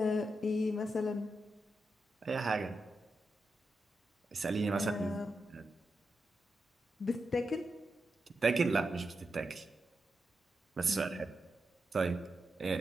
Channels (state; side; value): normal; both; correlation 0.87